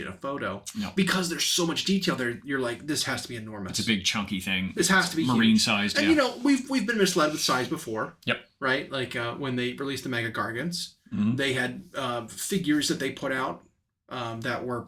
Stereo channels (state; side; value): identical; both; correlation 1.00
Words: in a photo. No. Because there's so much detail there. You're like, this has to be enormous. It's a big chunky thing. This has to be marine sized. And we've been misled with size before. Yep. Right? Like when they released the Mega Gargants, they had figures that they put out that were